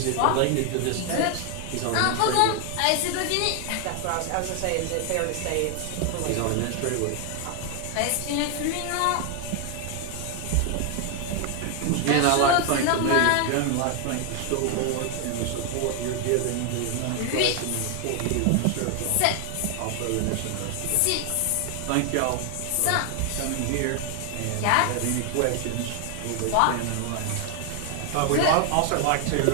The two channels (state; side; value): different; both; correlation 0.00